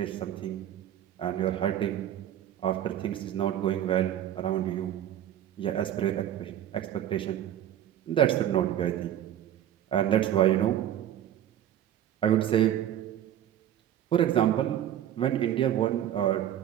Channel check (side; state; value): left; quieter; 11.2 dB